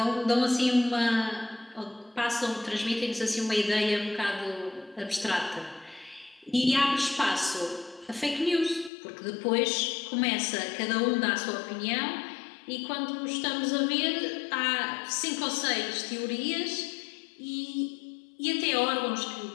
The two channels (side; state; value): right; drops out; at 8.9 s